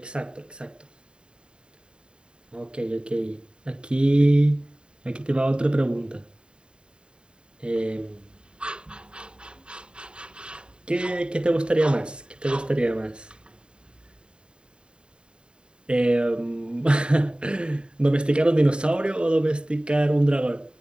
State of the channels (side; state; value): left; late; 0.050 ms